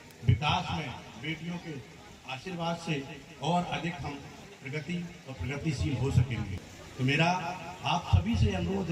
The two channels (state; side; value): identical; both; correlation 1.00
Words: विकास में बेटियों के आशीर्वाद से और अधिक हम प्रगति और प्रगतिशील हो सकेंगे। तो मेरा आप सभी से अनुरोध